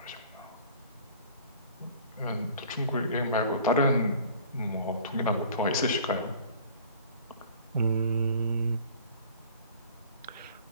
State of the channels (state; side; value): inverted; both; correlation -0.48